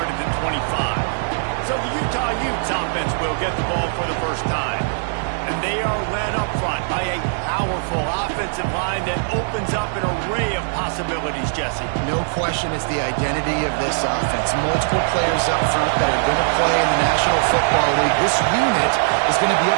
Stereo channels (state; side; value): silent; left; digital silence